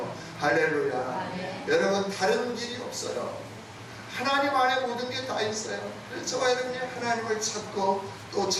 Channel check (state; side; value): identical; both; correlation 1.00